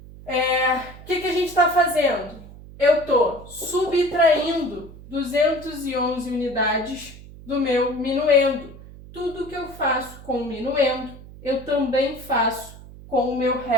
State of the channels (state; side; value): noise; right; hum, 17 dB below the sound